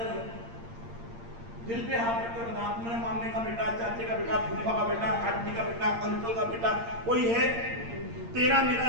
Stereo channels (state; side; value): late; left; 8.7 ms